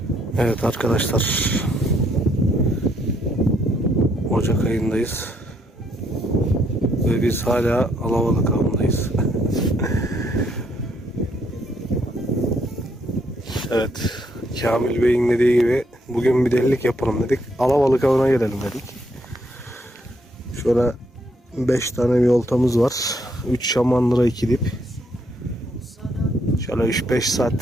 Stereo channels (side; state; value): both; normal; correlation 0.72